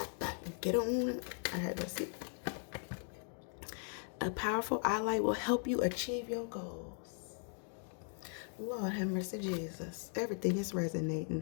up, get on. I had to see. A powerful ally will help you achieve your goals. Lord have mercy, Jesus. Everything is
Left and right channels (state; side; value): silent; right; 52 dB below the other